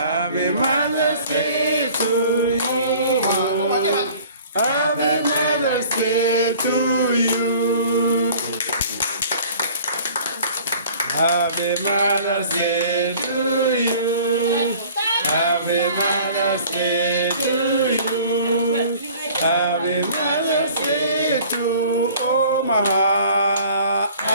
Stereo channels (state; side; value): inverted; both; correlation -0.49